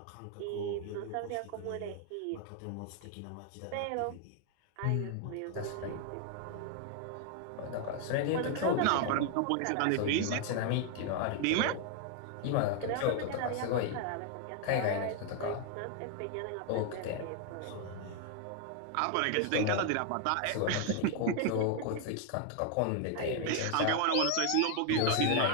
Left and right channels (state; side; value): different; both; correlation 0.00